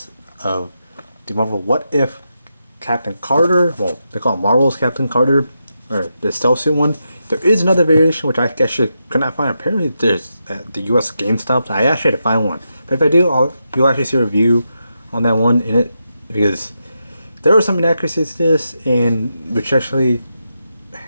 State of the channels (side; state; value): both; inverted; correlation -0.86